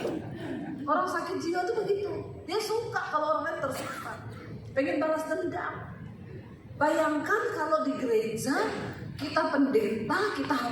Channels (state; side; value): identical; both; correlation 1.00